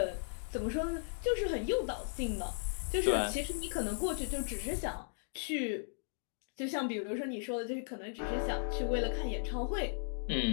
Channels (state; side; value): silent; right; digital silence